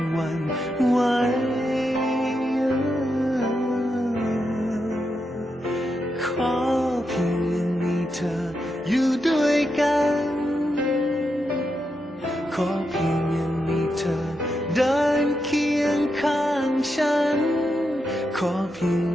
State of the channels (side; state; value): both; normal; correlation 0.85